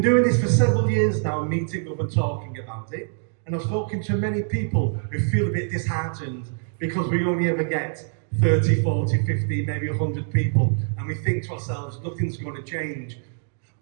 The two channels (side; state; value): left; silent; digital silence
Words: doing this for several years now, meeting up and talking about it, and I've spoken to many people who feel a bit disheartened because we only ever get 30, 40, 50, maybe 100 people, and we think to ourselves, nothing's going to change.